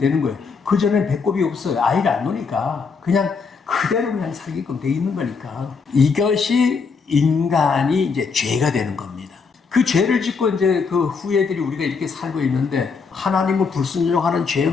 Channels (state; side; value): quieter; right; 5.1 dB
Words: 거예요. 그전에는 배꼽이 없어요. 아이를 안 놓으니까. 그냥 그대로 그냥 살게끔 돼 있는 거니까. 이것이 인간이 이제 죄가 되는 겁니다. 그 죄를 짓고 이제 그 후예들이 우리가 이렇게 살고 있는데 하나님을 불순종하는